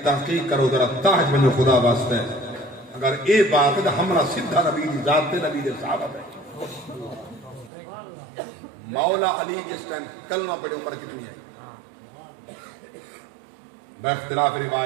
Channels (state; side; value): drops out; left; at 7.7 s